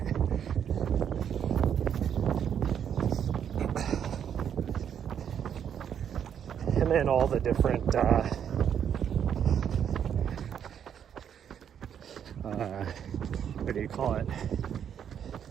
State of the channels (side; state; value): left; quieter; 8.6 dB